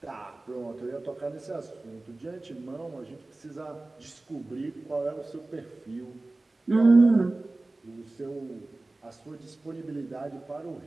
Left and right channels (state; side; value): quieter; left; 3.0 dB